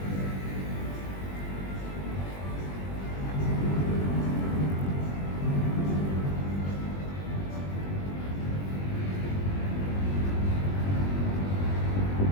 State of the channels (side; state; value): right; late; 21 ms